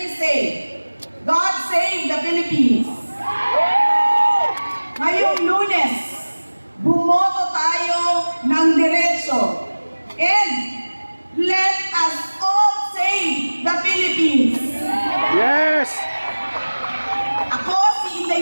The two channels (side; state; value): both; inverted; correlation -1.00